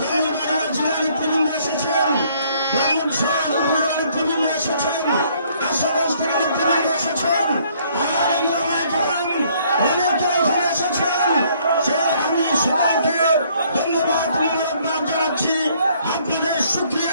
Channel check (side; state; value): both; inverted; correlation -0.64